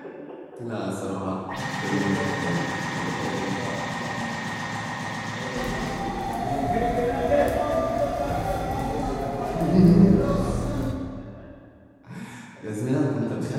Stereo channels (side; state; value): both; identical; correlation 1.00